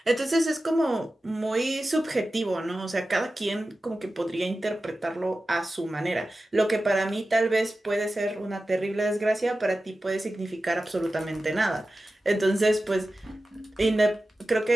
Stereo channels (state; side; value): normal; both; correlation 0.94